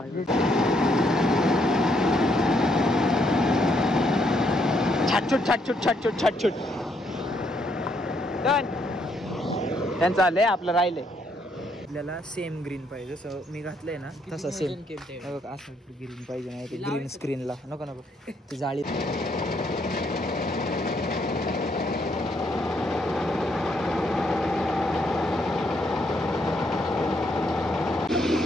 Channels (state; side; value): normal; both; correlation 0.73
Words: छाटछूट छाटछूट छाटछूट छाटछूट त्यांचं आलंय आपलं राहिलंय. आपल्याला सेम ग्रीन पाहिजे जसं मी घातलंय ना तसं सेम असं ग्रीन पाहिजे नाही ते ग्रीन स्क्रीनला नको नको ती जाळी.